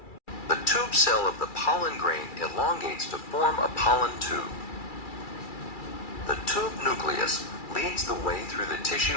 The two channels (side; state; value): right; late; 2.3 ms